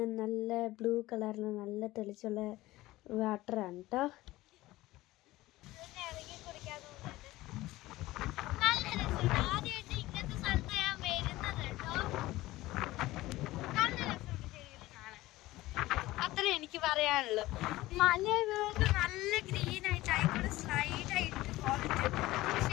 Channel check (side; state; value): right; quieter; 17.8 dB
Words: നല്ല ബ്ലൂ കളറിൽ നല്ല തെളിച്ചുള്ള വാട്ടറാണ് കേട്ടോ. അത്രേ എനിക്ക് പറയാനുള്ളൂ. മല നല്ല ഗ്രീൻ ആയിട്ട് ആയിക്കോട്ടെ സ്ലൈഡ് ആയിട്ട്